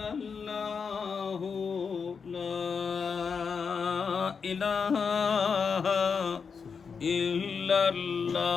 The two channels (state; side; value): quieter; right; 5.8 dB